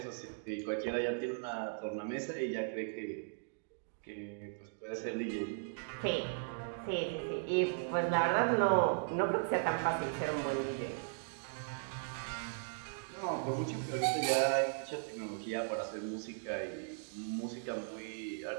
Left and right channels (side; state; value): left; silent; digital silence